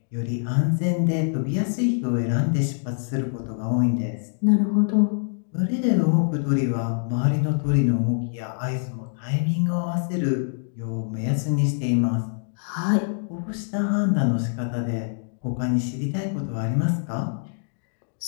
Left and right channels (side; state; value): right; silent; digital silence